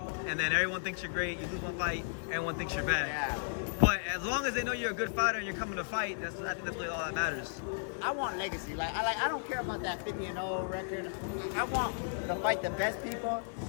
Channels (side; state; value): right; silent; digital silence